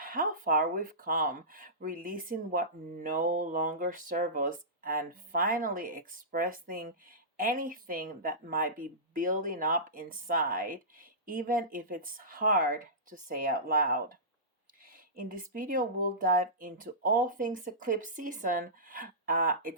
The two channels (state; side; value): normal; both; correlation -0.20